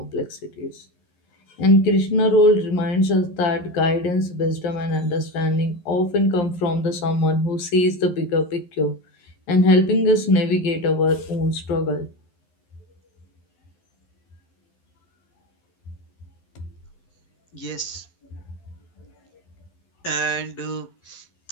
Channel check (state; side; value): late; right; 11 ms